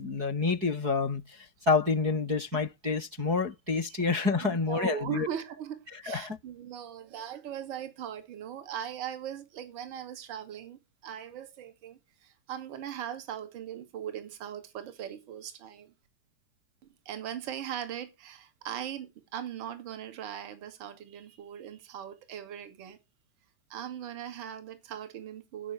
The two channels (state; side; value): late; left; 4.7 ms